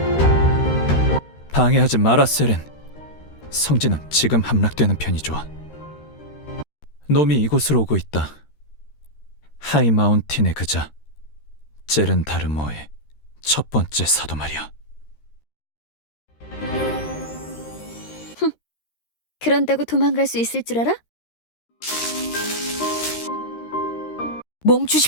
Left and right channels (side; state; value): right; late; 13 ms